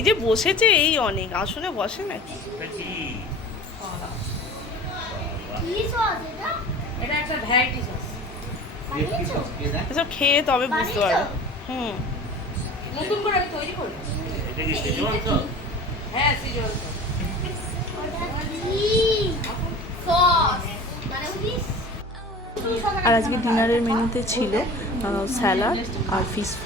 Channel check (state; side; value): normal; both; correlation 0.39